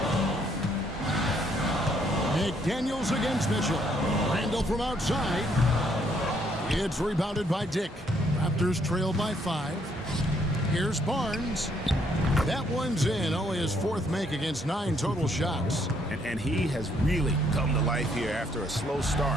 McDaniels against Mitchell. Randall from outside. It's rebounded by Dick. Raptors trail by 5. Here's Barnes. That one's in. Only his 4th make against 9 total shots. And he has really come to life here after a slow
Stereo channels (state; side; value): normal; both; correlation 0.69